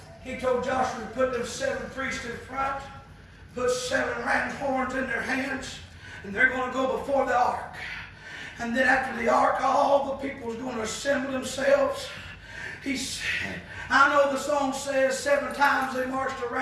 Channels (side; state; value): both; identical; correlation 1.00